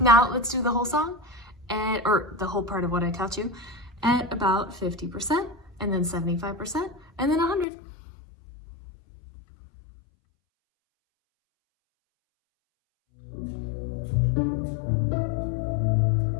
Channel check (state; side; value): drops out; right; at 7.7 s